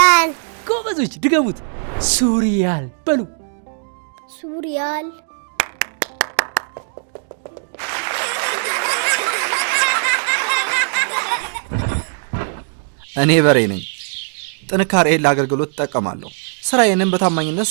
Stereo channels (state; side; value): silent; left; digital silence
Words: ጎበዞች፣ ድገሙት። ሱሪያል በሉ። ሱሪያል። እኔ በሬ ነኝ። ጥንካሬን ለአገልግሎት እጠቀማለሁ። ስራዬንም በታማኝነት